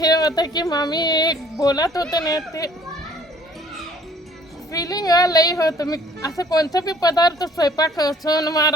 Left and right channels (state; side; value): normal; both; correlation 0.57